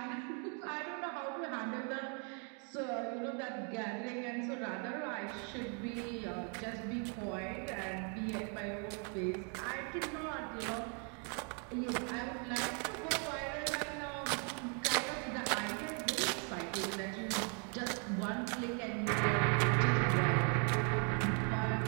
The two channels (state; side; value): quieter; left; 39.4 dB